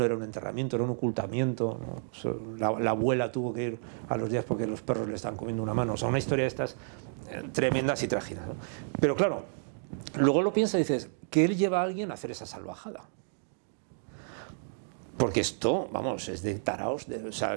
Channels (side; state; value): left; silent; digital silence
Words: era un enterramiento, era un ocultamiento, ¿no? La abuela tuvo que ir a los días porque los perros le estaban comiendo una mano. O sea, una historia de estas tremendas y trágicas, ¿no? Pero claro, luego lo piensas y dices, ¿qué él lleva a alguien a hacer esa salvajada? Porque esto, vamos, es de taraos, o sea,